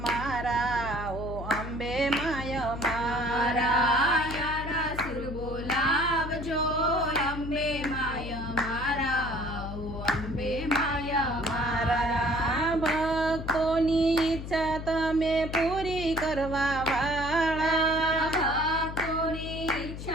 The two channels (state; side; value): noise; left; hum, 8 dB below the sound